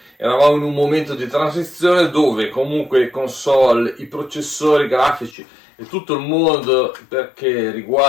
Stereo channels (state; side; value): drops out; right; at 5.4 s